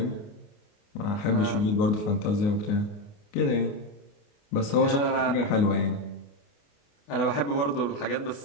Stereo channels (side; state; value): right; late; 29 ms